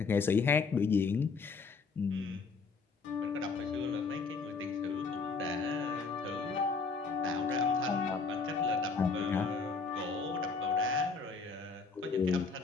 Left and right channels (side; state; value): right; quieter; 4.7 dB